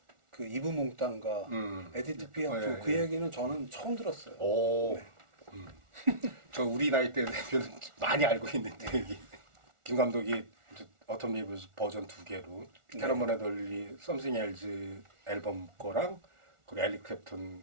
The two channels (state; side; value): late; left; 1.4 ms